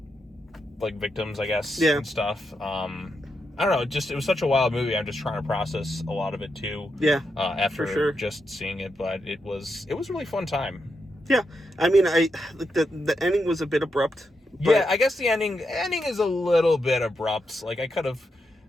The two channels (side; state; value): both; normal; correlation 0.84